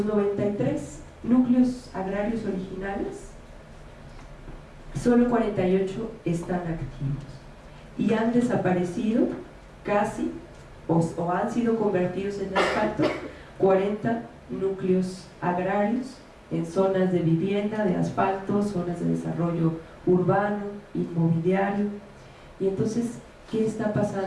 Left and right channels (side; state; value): both; identical; correlation 1.00